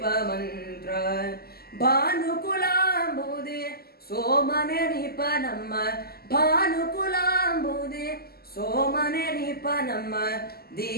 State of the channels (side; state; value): right; late; 0.45 ms